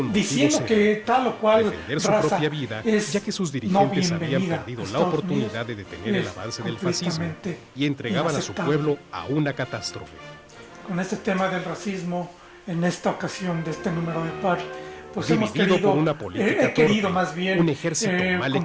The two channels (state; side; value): identical; both; correlation 1.00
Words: diciendo motivo que tal o cual defender su raza propia vida, es ya que sus no dirigentes habían bienvenida perdido a la Estados oportunidad Unidos, de detener el avance del fascismo completamente y entregaban a su inaceptable. pueblo a una catástrofe. Con este tema del racismo, en esta ocasión de este número de par, pues hemos Dividido querido, por una política he querido torpe, más bien un ejército mal